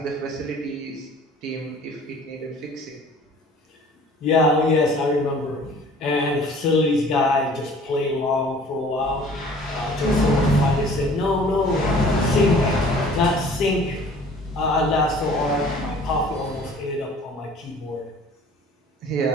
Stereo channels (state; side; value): normal; both; correlation 0.50